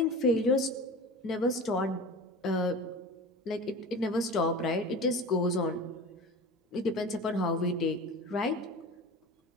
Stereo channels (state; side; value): normal; both; correlation 0.34